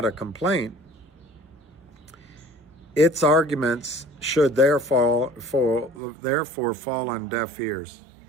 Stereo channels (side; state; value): left; drops out; at 6.0 s